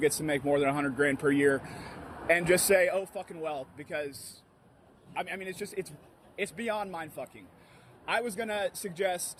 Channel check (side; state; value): both; identical; correlation 1.00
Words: to make more than 100 grand per year and just say, oh, fucking well, because I mean, it's beyond mind-fucking. I was gonna